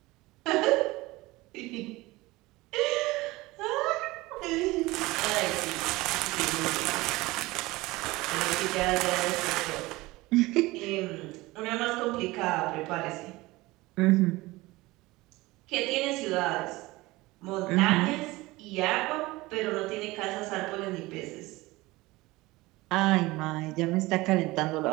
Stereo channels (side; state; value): left; quieter; 20.5 dB